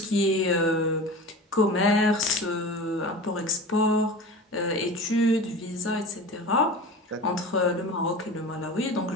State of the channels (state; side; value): normal; both; correlation 0.34